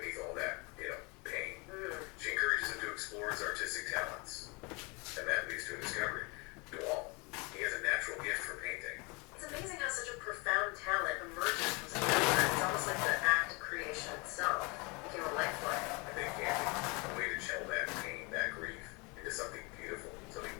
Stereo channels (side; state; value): right; quieter; 28.2 dB